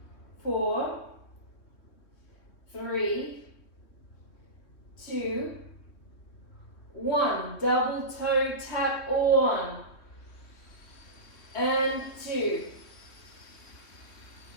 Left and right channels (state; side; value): late; right; 3.2 ms